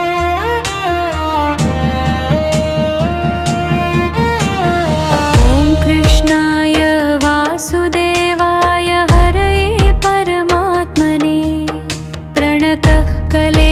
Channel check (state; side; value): identical; both; correlation 1.00